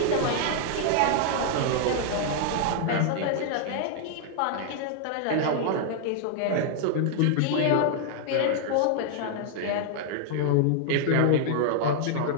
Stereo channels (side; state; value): both; different; correlation 0.00